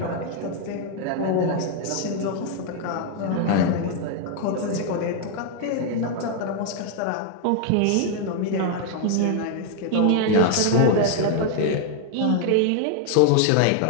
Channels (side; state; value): both; different; correlation 0.00